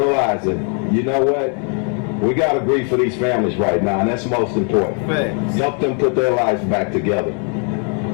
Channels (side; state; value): right; quieter; 39.6 dB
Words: you know what, we got to grieve for these families right now, and that's most important. Help them put their lives back together.